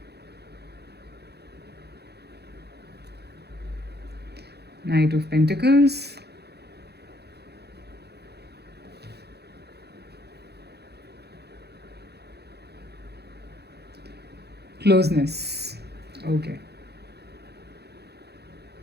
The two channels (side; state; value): left; late; 0.48 ms